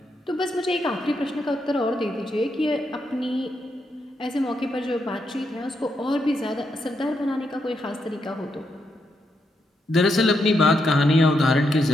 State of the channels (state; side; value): normal; both; correlation 0.81